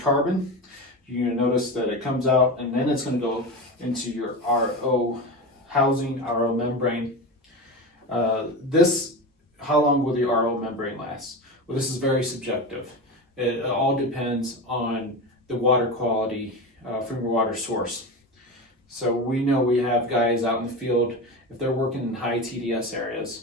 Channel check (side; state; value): both; normal; correlation 0.23